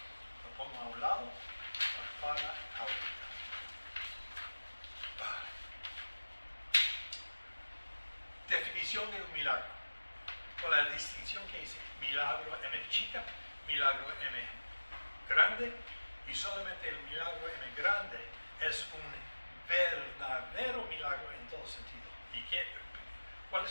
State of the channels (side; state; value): both; inverted; correlation -1.00